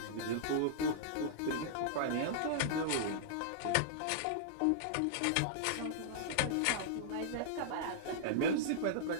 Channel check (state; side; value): different; both; correlation -0.02